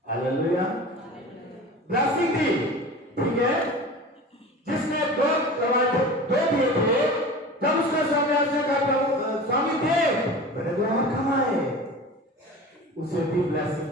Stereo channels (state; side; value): normal; both; correlation 0.35